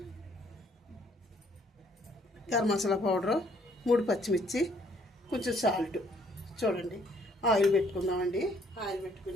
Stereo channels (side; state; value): both; normal; correlation 0.64